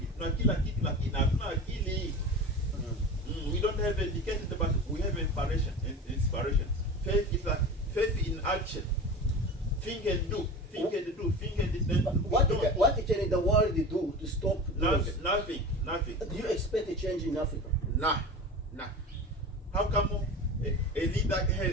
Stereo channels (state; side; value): normal; both; correlation 0.31